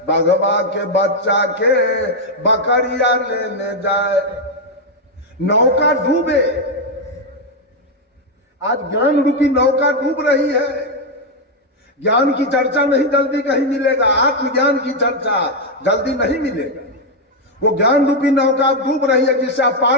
बगवा के बच्चा के बकरिया लेने जाए। नौका डूबे, आज ज्ञान रूपी नौका डूब रही है। ज्ञान की चर्चा नहीं जल्दी कहीं मिलेगा, आत्मज्ञान की चर्चा जल्दी नहीं मिलेगा। वो ज्ञान रूपी नौका डूब रही है, जिससे आप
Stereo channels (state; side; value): normal; both; correlation 0.02